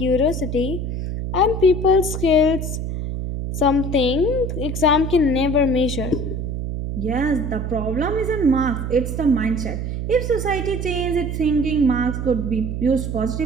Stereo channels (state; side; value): noise; right; hum, 4 dB below the sound